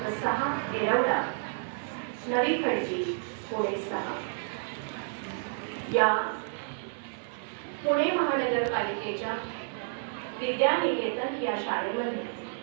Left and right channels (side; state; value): left; silent; digital silence